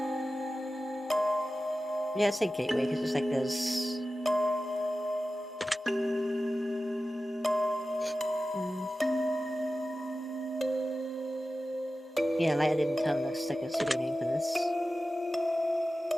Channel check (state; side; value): normal; both; correlation 0.94